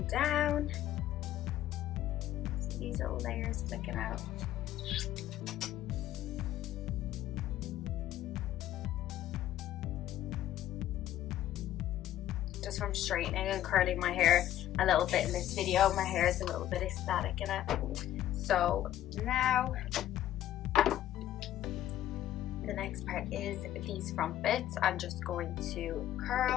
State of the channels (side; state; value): right; quieter; 12.6 dB